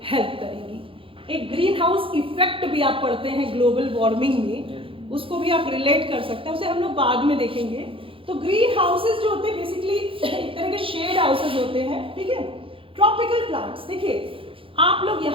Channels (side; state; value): left; late; 0.26 ms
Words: हेल्प करेगी। एक ग्रीन हाउस इफेक्ट भी आप पढ़ते हैं ग्लोबल वार्मिंग में, उसको भी आप रिलेट कर सकते हैं, उसे हम लोग बाद में देखेंगे। तो ग्रीन हाउसेस जो होते हैं बेसिकली एक तरह के शेड हाउसेस होते हैं, ठीक है। ट्रॉपिकल प्लांट्स, देखिए आप लोग